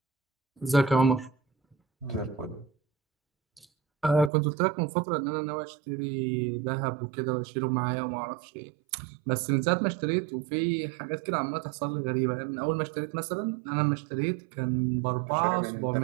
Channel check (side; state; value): left; drops out; at 4.3 s